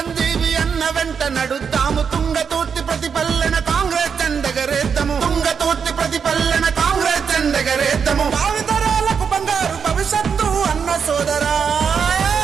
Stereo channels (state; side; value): quieter; left; 6.6 dB